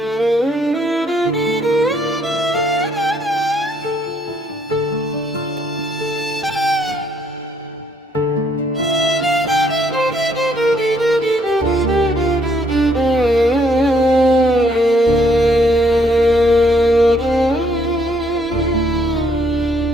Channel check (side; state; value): both; normal; correlation 0.68